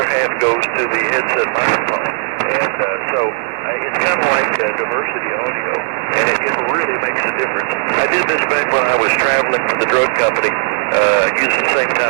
half goes to the headset microphone. And so it's kind of like diversity audio, and it really makes a difference. I did this back when I was traveling for the drug company, using the same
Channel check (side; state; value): left; silent; digital silence